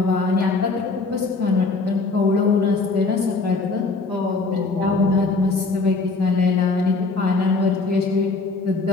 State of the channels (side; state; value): right; quieter; 3.8 dB